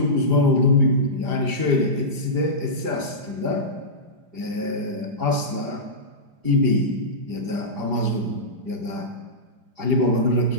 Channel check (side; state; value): left; late; 5.0 ms